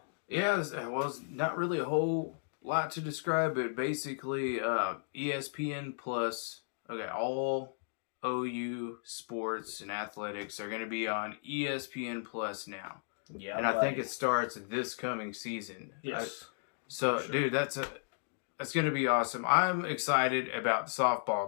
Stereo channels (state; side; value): silent; right; digital silence